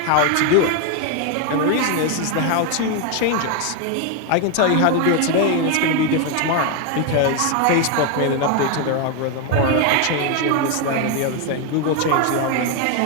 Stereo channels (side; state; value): both; different; correlation 0.01